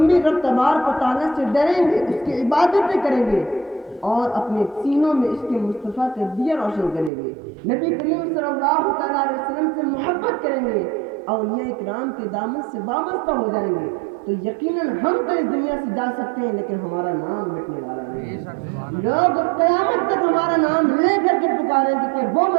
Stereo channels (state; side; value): drops out; left; at 7.1 s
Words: بھی رب تبارک و تعالیٰ سے ڈریں گے, اس کی عبادتیں کریں گے اور اپنے سینوں میں اس کے مصطفیٰ کا دیا روشن کریں گے, نبی کریم صلی اللہ تعالیٰ علیہ وسلم سے محبت کریں گے, اولیاء اکرام کے دامن سے وابستہ ہو جائیں گے, تو یقیناً ہم تو اس دنیا سے جا سکتے ہیں لیکن ہمارا نام مٹنے والا نہیں ہے. لوگ قیامت تک ہمارا نام لے کر کے پکاریں گے کہ وہ